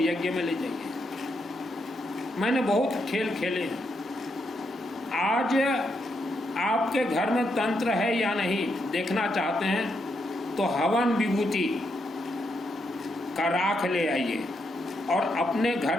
में ले जाइए। मैंने बहुत खेल खेले हैं। आज आपके घर में तंत्र है या नहीं देखना चाहते हैं तो हवन विभूति का राख ले आइए और अपने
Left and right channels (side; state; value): both; normal; correlation 0.80